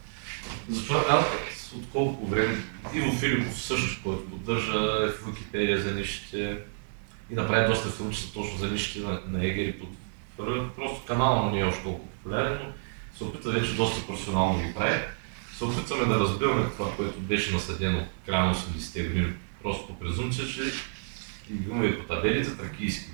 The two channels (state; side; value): silent; left; digital silence